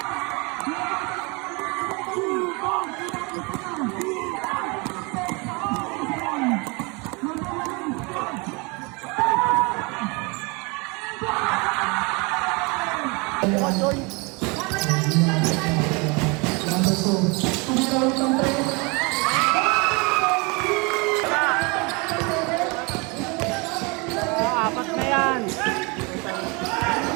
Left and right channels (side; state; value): left; quieter; 29.0 dB